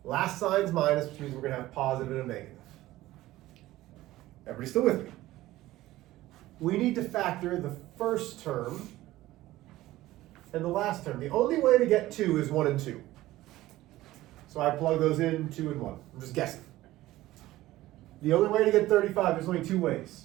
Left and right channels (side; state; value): left; quieter; 16.4 dB